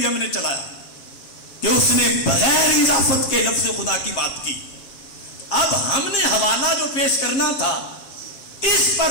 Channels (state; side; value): late; right; 7.5 ms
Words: ہم نے چلایا کہ اس نے بغیر اضافت کے لفظ خدا کی بات کی. اب ہم نے حوالہ جو پیش کرنا تھا اس